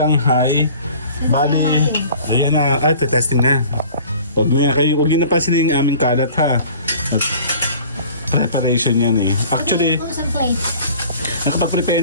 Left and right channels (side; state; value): both; inverted; correlation -0.46